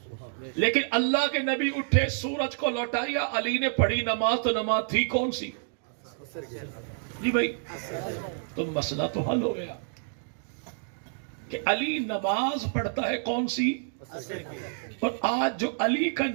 لیکن اللہ کے نبی اٹھے، سورج کو لوٹایا، علی نے پڑھی نماز، تو نماز تھی کون سی؟ جی بھائی تو مسئلہ تو حل ہو گیا کہ علی نماز پڑھتا ہے کون سی؟ اور آج جو علی کا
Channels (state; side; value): silent; left; digital silence